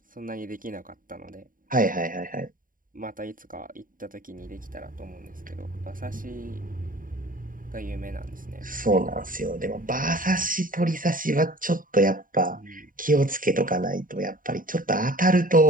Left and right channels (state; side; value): late; left; 0.40 ms